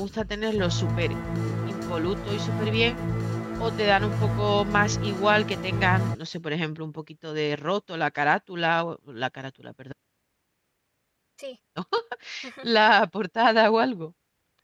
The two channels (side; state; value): both; identical; correlation 1.00